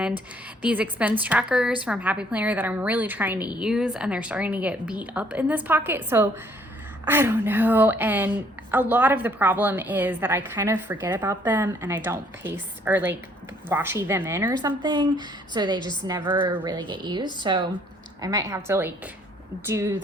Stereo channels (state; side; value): normal; both; correlation 0.63